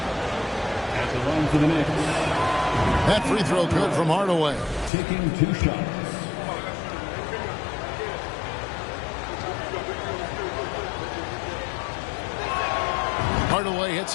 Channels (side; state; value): right; drops out; at 4.9 s